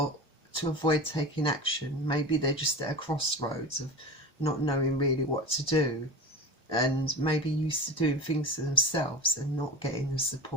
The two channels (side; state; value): both; normal; correlation 0.30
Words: to avoid taking action. Maybe they're just at a crossroads of not knowing really what to do, and maybe used to doing things to themselves and not getting the